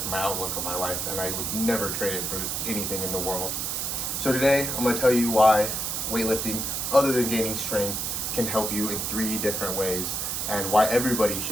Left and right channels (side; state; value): right; noise; hiss, 1 dB below the sound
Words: my outlook on my life, and I would never trade it for anything in the world. So today, I'm going to tell you why weightlifting, other than gaining strength, can help you in 3 different ways, and why everybody